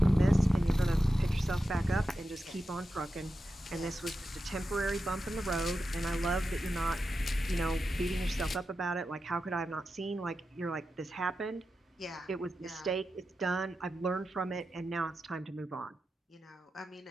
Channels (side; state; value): both; normal; correlation 0.90